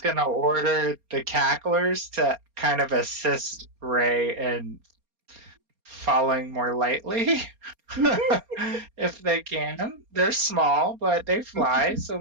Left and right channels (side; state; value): left; late; 4.3 ms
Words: going to order the cacklers to kind of assist Ray in falling more lightly. If they can. They're small, but they fly, so